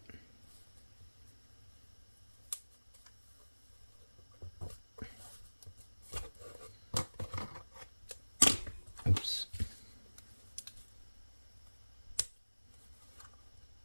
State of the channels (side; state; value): both; inverted; correlation -1.00